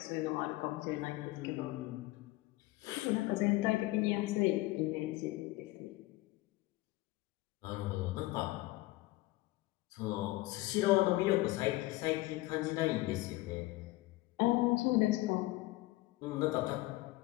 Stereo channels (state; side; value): quieter; right; 19.4 dB